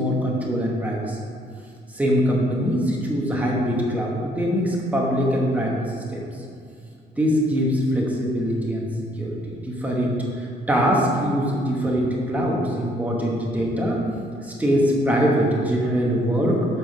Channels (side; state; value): both; normal; correlation 0.67